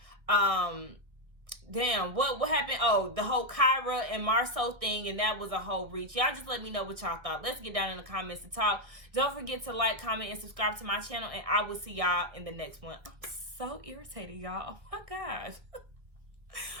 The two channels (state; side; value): late; left; 1.8 ms